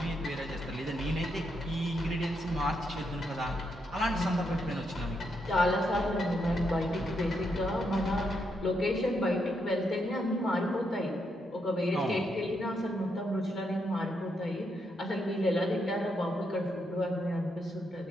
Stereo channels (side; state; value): both; normal; correlation 0.79